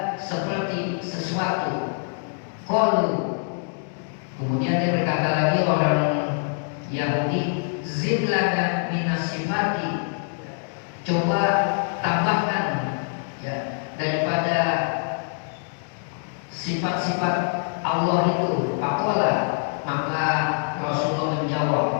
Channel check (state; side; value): silent; right; 58 dB below the other